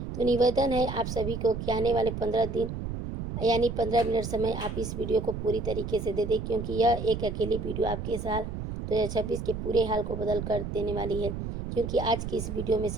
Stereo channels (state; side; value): noise; right; rumble, 5 dB below the sound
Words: तो निवेदन है आप सभी को कि आने वाले 15 दिन यानी 15 मिनट समय आप इस वीडियो को पूरी तरीके से दे दें, क्योंकि यह एक अकेली वीडियो आपके साल 2026 के पूरे हाल को बदल कर देने वाली है। क्योंकि आज की इस वीडियो में